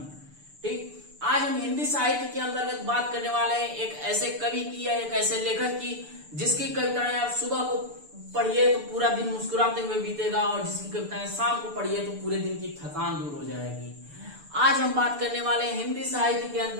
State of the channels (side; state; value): left; late; 6.8 ms